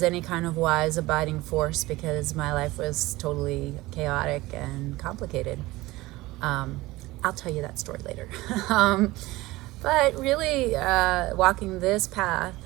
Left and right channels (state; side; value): quieter; left; 19.4 dB